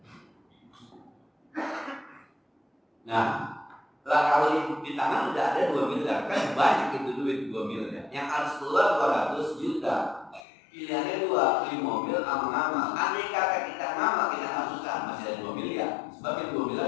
Nah, lah kalau di tangan udah ada 2 miliar, kan banyak itu duit 2 miliar. Yang harus keluar 200 juta. Pilihannya 2, beli mobil sama ngamal. Andai kata kita ngamal, kita nggak susah, masih ada 2 miliar. Sebab yang 2 miliar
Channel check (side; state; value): right; drops out; at 10.4 s